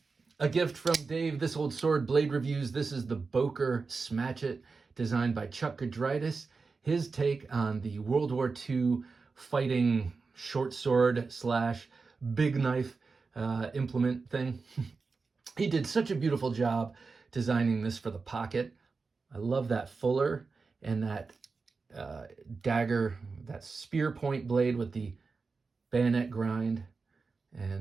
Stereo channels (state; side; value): quieter; left; 4.4 dB